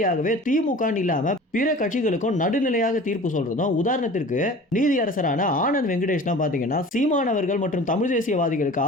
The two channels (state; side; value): normal; both; correlation 0.41